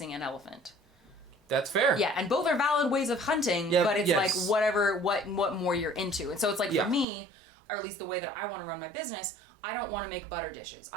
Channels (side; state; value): left; drops out; at 7.1 s